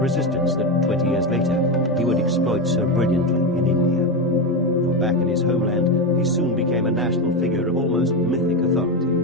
that 20 years later he would exploit so brilliantly in India. For back in his homeland, he soon became a national figure of almost mythic authority.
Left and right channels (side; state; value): both; normal; correlation 0.13